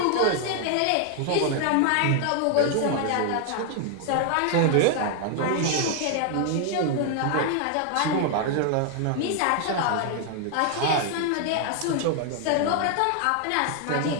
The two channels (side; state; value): both; different; correlation 0.00